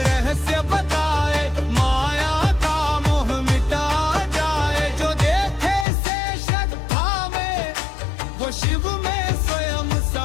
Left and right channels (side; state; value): right; drops out; at 5.9 s